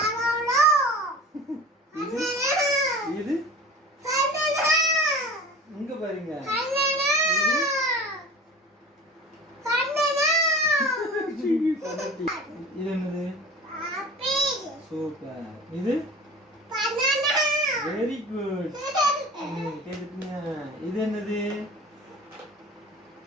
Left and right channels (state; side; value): normal; both; correlation 0.38